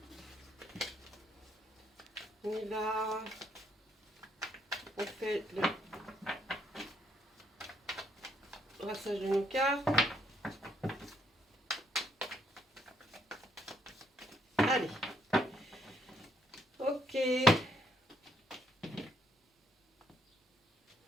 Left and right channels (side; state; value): both; normal; correlation 0.72